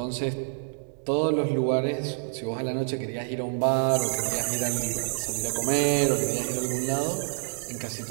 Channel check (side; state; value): left; silent; digital silence